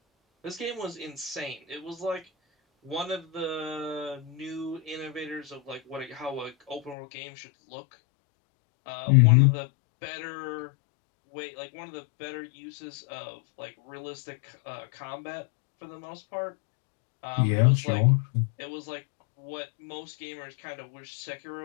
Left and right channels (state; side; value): drops out; right; at 7.0 s